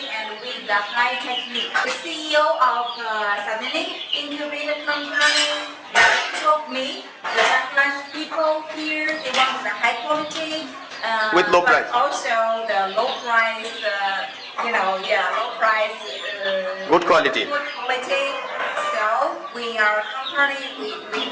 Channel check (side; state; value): both; identical; correlation 1.00